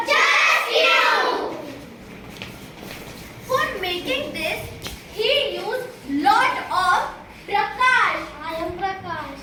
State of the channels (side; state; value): both; identical; correlation 1.00